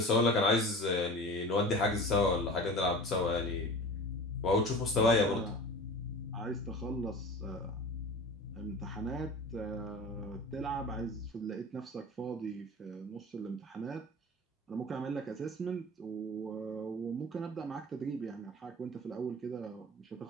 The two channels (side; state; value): both; normal; correlation 0.36